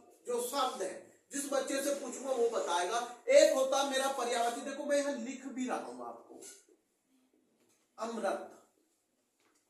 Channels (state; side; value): identical; both; correlation 1.00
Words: जो शब्द है, जिस बच्चे से पूछूंगा वो बताएगा। एक होता मेरा पर्यायवाची, देखो मैं यहां लिख भी रहा हूं आपको, अमृत,